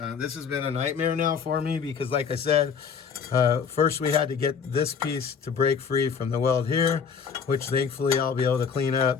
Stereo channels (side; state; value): right; quieter; 6.4 dB